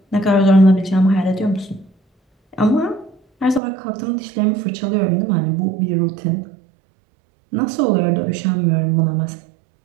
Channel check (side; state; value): left; drops out; at 3.6 s